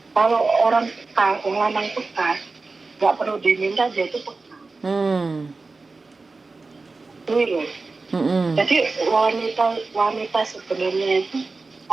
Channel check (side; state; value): left; quieter; 3.8 dB